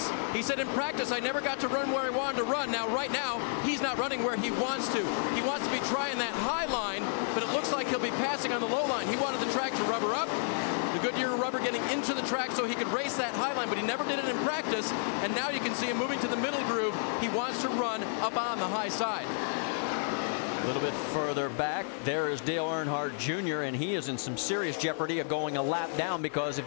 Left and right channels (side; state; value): right; silent; 57 dB below the other